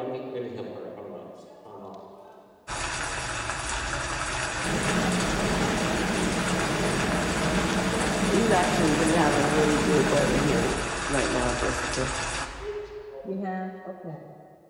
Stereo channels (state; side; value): identical; both; correlation 1.00